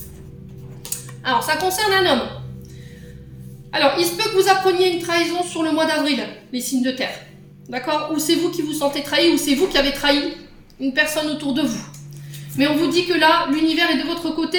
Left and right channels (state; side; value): identical; both; correlation 1.00